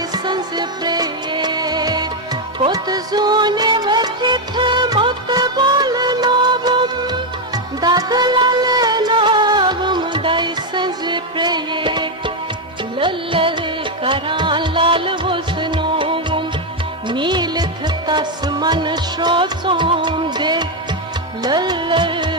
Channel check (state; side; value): normal; both; correlation 0.04